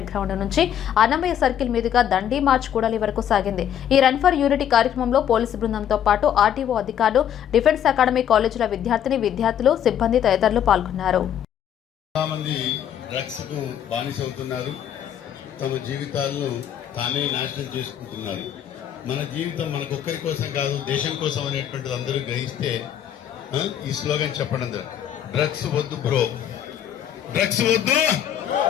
గ్రౌండ్ నుంచి అన్నమయ్య సర్కిల్ మీదుగా దండి మార్చ్ కూడలి వరకు సాగింది. ఈ రన్ ఫర్ యూనిటీ కార్యక్రమంలో పోలీసు బృందంతో పాటు ఆర్టీఓ అధికారులు, డిఫెన్స్ అకాడమీ కాలేజీల విద్యార్థులు, సిబ్బంది తదితరులు పాల్గొన్నారు. డ్రగ్స్ కు బానిసవుతున్నారు. తమ జీవితాలను తానే నాశనం చేసుకుంటున్నారు. మన జీవితం మనకొక్కరి కోసం కాదు, దేశం కోసం అనేటువంటిది అందరూ గ్రహిస్తే ఈ స్లోగన్ చెప్పడం డ్రగ్స్ వద్దు బ్రో, డ్రగ్స్ వద్దు,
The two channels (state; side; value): quieter; right; 9.9 dB